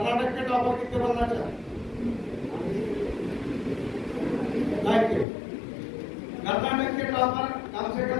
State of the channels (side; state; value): right; drops out; at 5.2 s